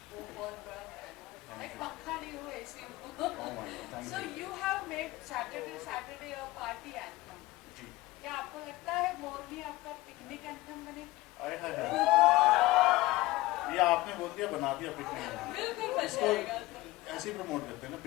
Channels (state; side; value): quieter; right; 19.2 dB